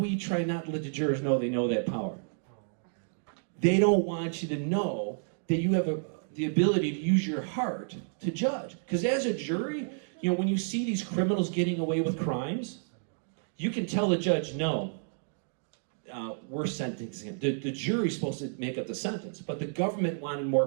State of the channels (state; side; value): silent; left; digital silence